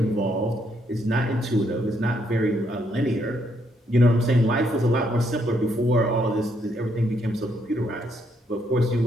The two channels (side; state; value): both; normal; correlation 0.74